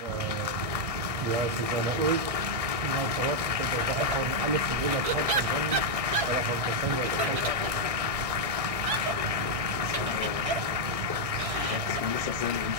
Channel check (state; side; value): late; left; 1.6 ms